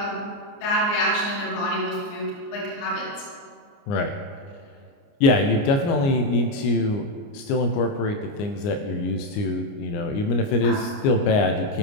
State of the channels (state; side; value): late; right; 29 ms